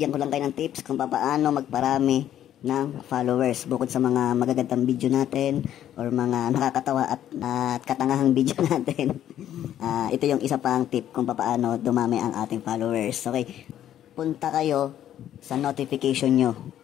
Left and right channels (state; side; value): quieter; right; 11.2 dB